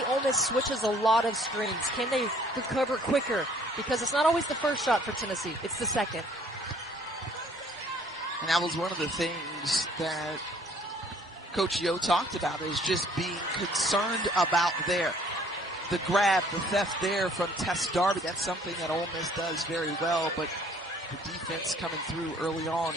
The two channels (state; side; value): normal; both; correlation 0.58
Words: Ole Miss switches a lot of screens. Can they recover quicker? Because it's not always the first shot for Tennessee. It's the second. And that was one of the things that Coach Yo talked about, is just being concerned about the grab, the theft there from Tess Darby. That's something that Ole Miss does very well, but the defense coming through early on